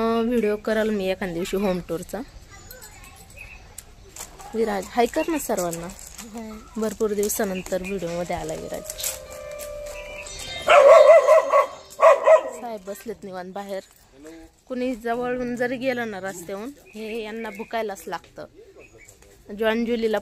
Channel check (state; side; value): identical; both; correlation 1.00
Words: व्हिडिओ कराल मी एखाद्या दिवशी होम टूरचा. विराज हाय कर ना सर्वांना. भरपूर दिवसानंतर व्हिडिओ मध्ये आलाय विराज. साहेब बसलेत निवांत बाहेर. कुणी जवळून जरी गेलं ना रस्त्याहून, हे यांना भुकायलाच लागतं. जॉन जुलीला